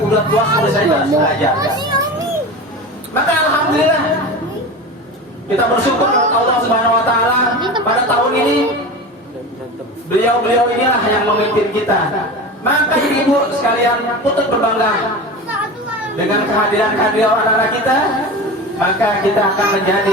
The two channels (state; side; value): normal; both; correlation 0.29